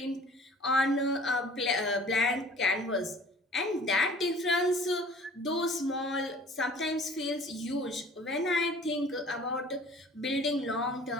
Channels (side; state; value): both; normal; correlation 0.49